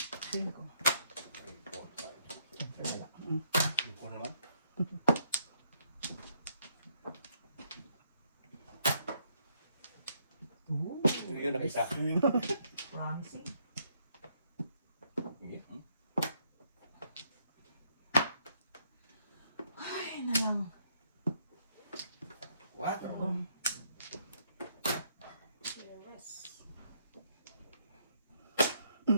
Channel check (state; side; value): inverted; both; correlation -0.72